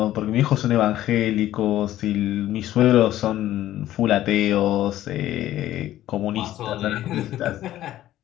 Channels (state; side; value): quieter; right; 13.5 dB